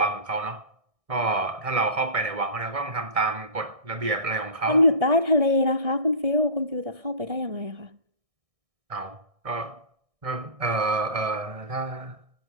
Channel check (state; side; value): late; left; 1.6 ms